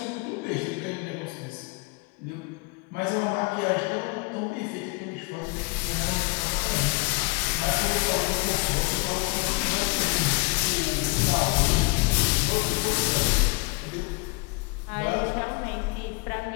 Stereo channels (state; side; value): quieter; right; 28.4 dB